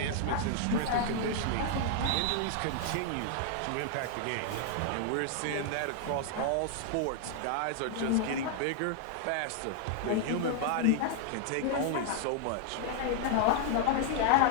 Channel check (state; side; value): different; both; correlation 0.00